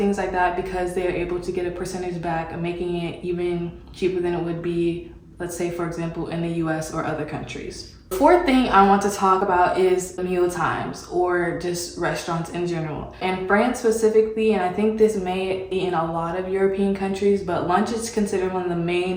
like that because they're able to get a percentage back, making it even cheaper than it would be, let's say, for example, in the US or other countries. The fourth thing I want to talk about is meal times, or just restaurants in general. In France specifically, and I think this may be in a lot of European countries, but lunch is considered one of the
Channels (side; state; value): both; identical; correlation 1.00